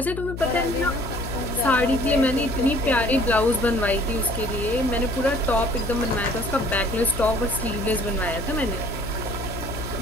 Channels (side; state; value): left; noise; hum, 8 dB below the sound